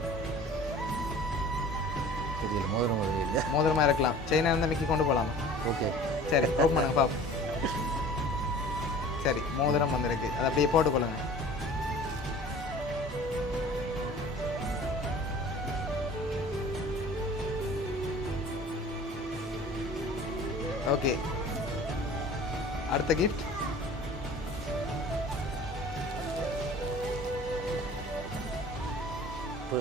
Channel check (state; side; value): normal; both; correlation 0.44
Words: மோதிரமா இருக்கலாம். செயினா இருந்தால் மிக்கி கொண்டு போகலாமா? ஓகே, சரி, ஓப்பன் பண்ணுங்க பார்ப்போம். சரி, மோதிரம் வந்திருக்கு, அதை அப்படியே போட்டுக்கொள்ளுங்க. ஓகே, அடுத்த கிஃப்ட்.